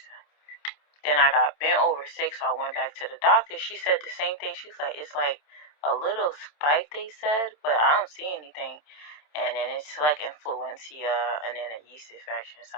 Then I got bent over sick, so I went back to the doctor. She said the same thing. She's like, it's like a little spike, they said, but I don't see anything. And then it's like influenza and then a yeast infection or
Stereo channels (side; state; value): right; late; 27 ms